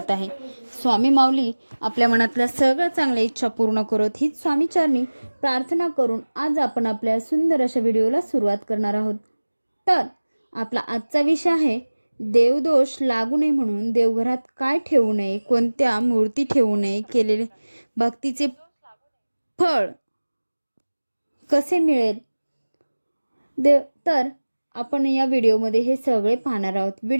आहे. स्वामी माऊली आपल्या मनातल्या सगळ्या चांगल्या इच्छा पूर्ण करत हीच स्वामीचरणी प्रार्थना करून आज आपण आपल्या सुंदर अशा व्हिडिओला सुरुवात करणार आहोत. तर आपला आजचा विषय आहे देवदोष लागू नये म्हणून देवघरात काय ठेवू नये, कोणत्या मूर्ती ठेवू नये, केलेले भक्तीचे फळ कसे मिळेल. तर आपण या व्हिडिओमध्ये हे सगळे पाहणार आहोत.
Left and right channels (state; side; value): inverted; both; correlation -1.00